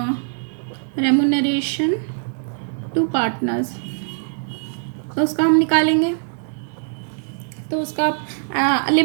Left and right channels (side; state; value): left; silent; 64 dB below the other